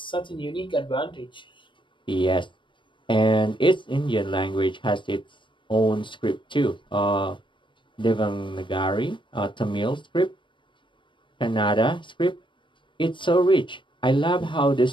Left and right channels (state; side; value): late; right; 0.24 ms